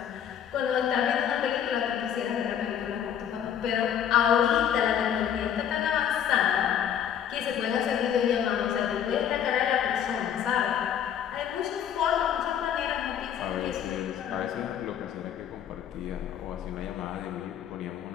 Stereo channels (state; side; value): quieter; right; 9.3 dB